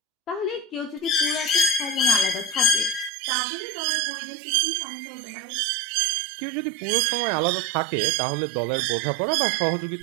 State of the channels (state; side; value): drops out; left; at 3.1 s